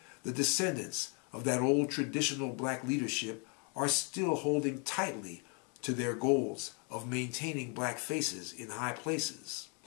the descendants of that old traditional black leadership are still holding tightly to their goals of maintaining black faces in high places,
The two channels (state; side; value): quieter; right; 36.2 dB